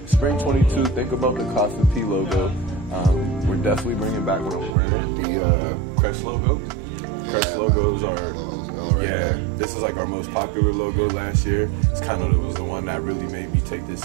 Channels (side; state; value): left; drops out; at 4.8 s